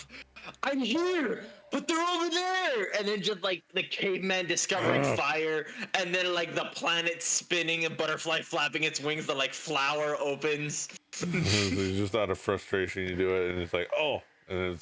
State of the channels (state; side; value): identical; both; correlation 1.00